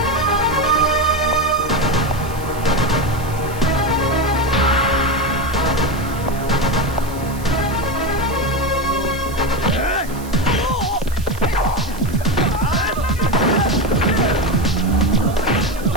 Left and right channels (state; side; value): noise; right; hiss, 18 dB below the sound